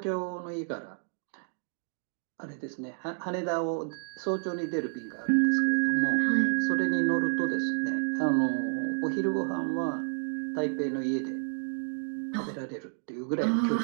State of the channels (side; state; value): left; silent; 58 dB below the other